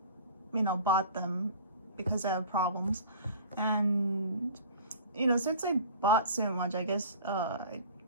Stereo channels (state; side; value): inverted; both; correlation -0.42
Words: bought them because I have problems. And, since I bought so much, I guess, I